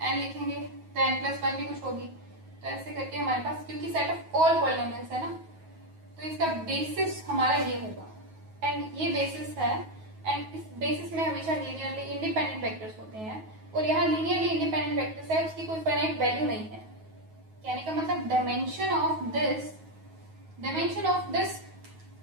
लिखेंगे तो n+1 भी कुछ होगी। तो ऐसे करके हमारे पास, क्योंकि सेट ऑफ ऑल पॉलिनोमियल्स है ना, तो इसका बेसिस हमारा ये होगा, एंड ये बेसिस है, एंड इस बेसिस में हमेशा लीनियरली इंडिपेंडेंट वेक्टर्स होते हैं, और यहाँ लीनियरली इंडिपेंडेंट वेक्टर्स है, उसकी कोई फाइनाइट वैल्यू नहीं है। कहने का मतलब डायमेंशन ऑफ दिस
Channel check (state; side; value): late; left; 9.3 ms